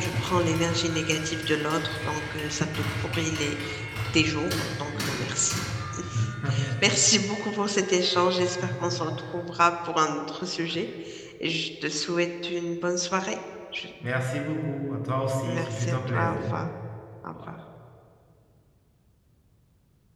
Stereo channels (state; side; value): identical; both; correlation 1.00